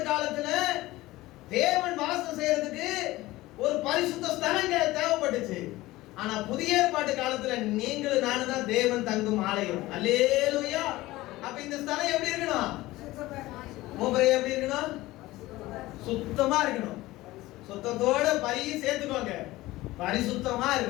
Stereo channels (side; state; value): right; quieter; 18.2 dB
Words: காலத்துல தேவன் வாசம் செய்யறதுக்கு ஒரு பரிசுத்த ஸ்தலங்க தேவைப்பட்டுச்சு. ஆனா புதிய ஏற்பாட்டு காலத்துல நீங்களும் நானும் தான் தேவன் தங்கும் ஆலயம். அல்லேலூயா. அப்ப இந்த ஸ்தலம் எப்படி இருக்கணும்? மூப்பரே எப்படி இருக்கணும்? சுத்தமா இருக்கணும். சுத்தத்தோட பரியும் சேர்த்துக்கோங்க, பரிசுத்தமா